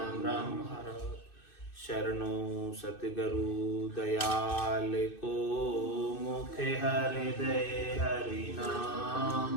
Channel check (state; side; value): late; right; 2.6 ms